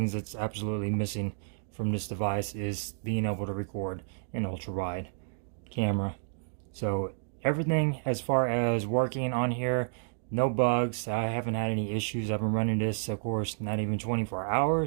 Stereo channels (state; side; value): silent; left; digital silence